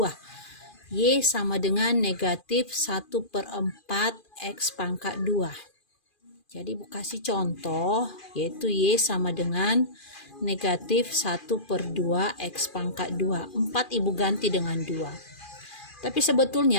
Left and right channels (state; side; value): late; right; 2.4 ms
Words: Y sama dengan negatif 1/4 X pangkat 2. Jadi Bu kasih contoh yaitu Y sama dengan negatif 1/2 X pangkat 2. 4 Ibu ganti dengan 2. Tapi